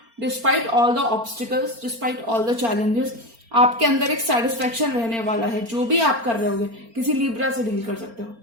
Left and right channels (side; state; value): left; late; 4.4 ms